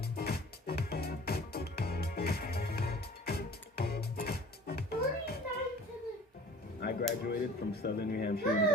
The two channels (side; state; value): both; normal; correlation 0.46